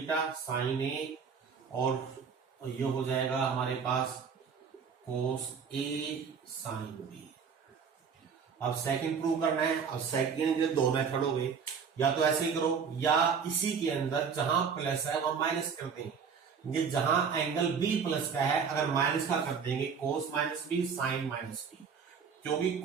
साइन ए, और ये हो जाएगा हमारे पास कोस ए साइन बी। अब सेकंड प्रूव करना है। अब सेकंड के दो मेथड हो गए, या तो ऐसे ही करो या इसी के अंदर जहां प्लस है वहां माइनस कर देंगे। ये जहां एंगल बी प्लस का है अगर माइनस का कर देंगे cos minus B sine minus B, क्योंकि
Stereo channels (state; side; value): quieter; left; 6.3 dB